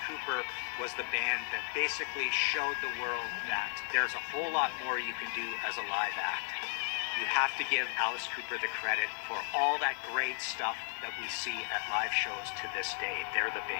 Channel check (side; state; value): right; silent; 55 dB below the other